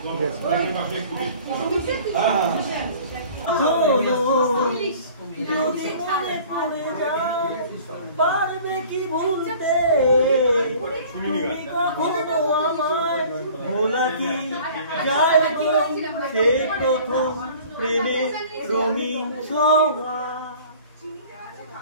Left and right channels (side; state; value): both; inverted; correlation -0.48